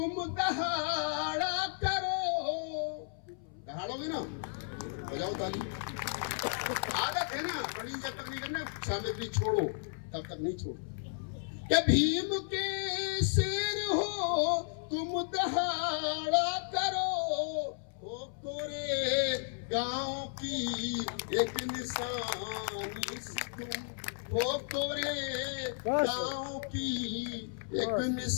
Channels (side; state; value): right; silent; 55 dB below the other